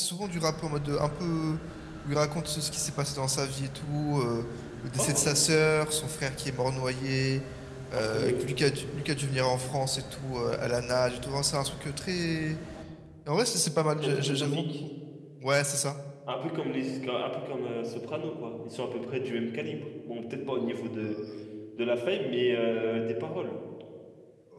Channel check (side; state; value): both; identical; correlation 1.00